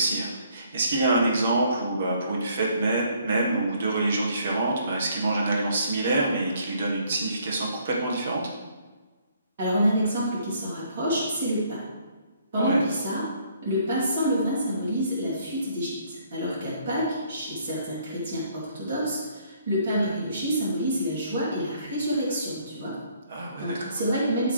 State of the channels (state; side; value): inverted; both; correlation -0.65